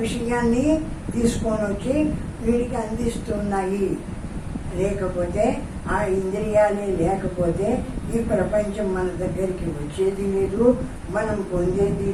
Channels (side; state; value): both; identical; correlation 1.00